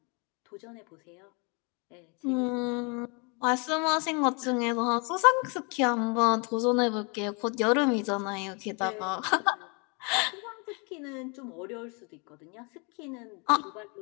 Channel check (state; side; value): quieter; right; 33.0 dB